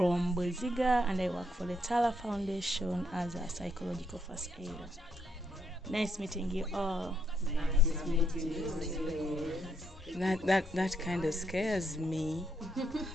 Boziga and I work for the Tala Foundation as a psychological first aider. Nice meeting you all. Nice meeting you. That kind of scares me.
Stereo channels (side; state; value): both; normal; correlation 0.75